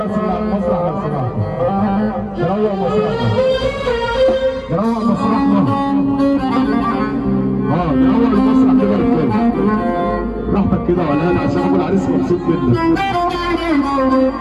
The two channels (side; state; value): both; identical; correlation 1.00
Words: اللي على المسرح لو سمحتوا نروح مسرحنا، نروح مسرحنا. نروح المسرح كده يا رجاله براحتك كده ولا انا، عشان ابو العريس مبسوط جدا.